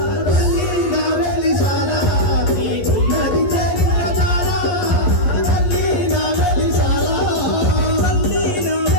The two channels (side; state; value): right; late; 11 ms